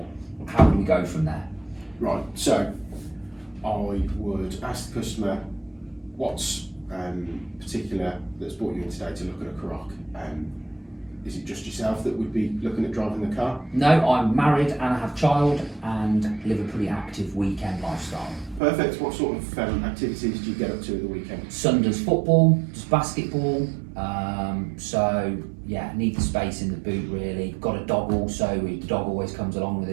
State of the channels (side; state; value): left; drops out; at 18.6 s